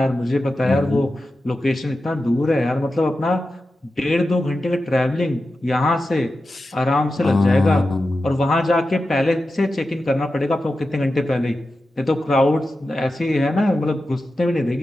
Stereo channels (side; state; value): both; normal; correlation 0.92